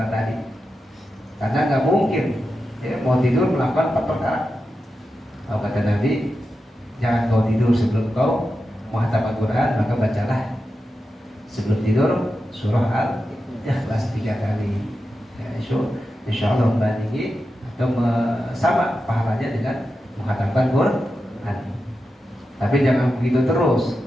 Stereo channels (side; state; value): both; normal; correlation 0.90